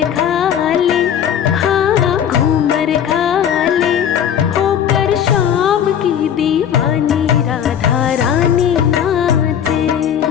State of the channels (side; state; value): right; quieter; 9.1 dB